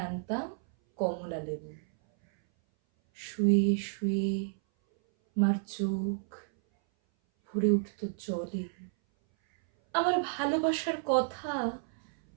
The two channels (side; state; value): left; silent; 57 dB below the other